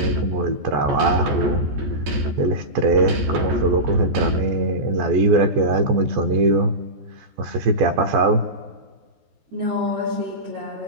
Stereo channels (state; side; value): late; left; 14 ms